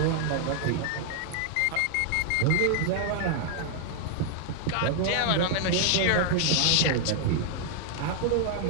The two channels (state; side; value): different; both; correlation 0.00